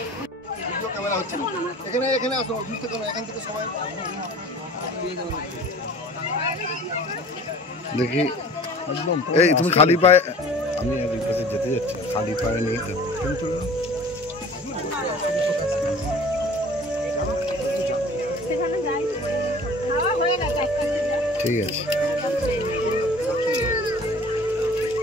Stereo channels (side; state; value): both; normal; correlation 0.45